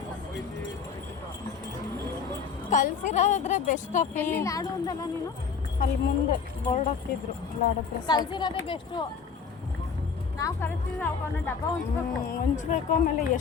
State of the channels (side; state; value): right; quieter; 5.9 dB